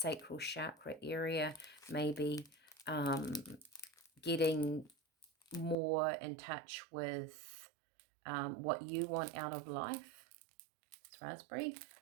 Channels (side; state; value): left; drops out; at 5.8 s